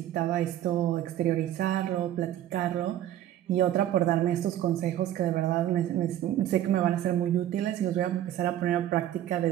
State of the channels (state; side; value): quieter; left; 12.2 dB